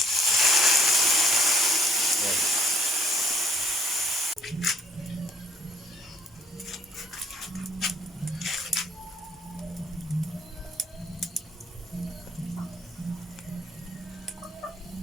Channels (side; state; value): both; normal; correlation 0.60